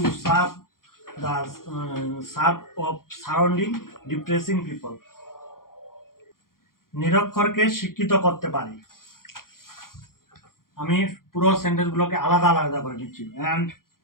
serve the serve of surrounding depressing people. নিরক্ষরকে শিক্ষিত করতে পারি। আমি পুরো সেন্টেন্সগুলোকে আলাদা আলাদা করে নিচ্ছি, অ্যান্ড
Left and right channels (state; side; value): late; right; 0.91 ms